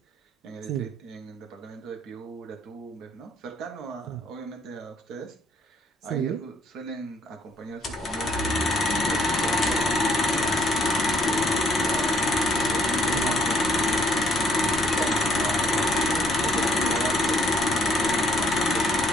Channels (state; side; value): normal; both; correlation 0.64